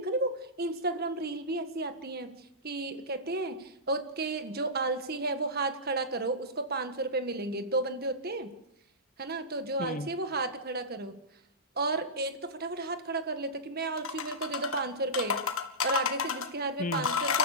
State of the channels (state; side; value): normal; both; correlation -0.17